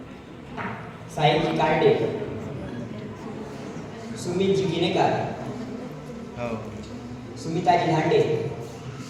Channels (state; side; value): identical; both; correlation 1.00